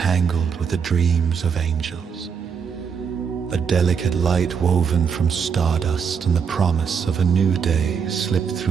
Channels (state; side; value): quieter; left; 6.5 dB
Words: with the dreams of angels. A delicate light woven from stardust and the promise of a new day slipped